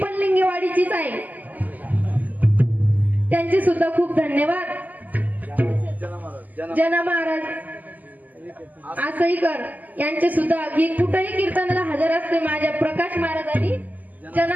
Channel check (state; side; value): late; left; 0.081 ms